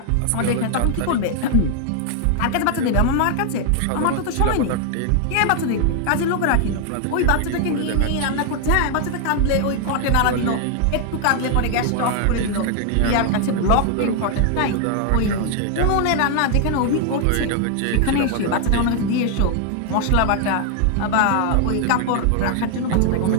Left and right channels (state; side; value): different; both; correlation 0.00